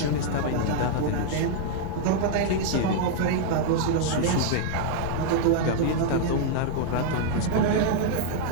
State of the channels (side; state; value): both; different; correlation -0.01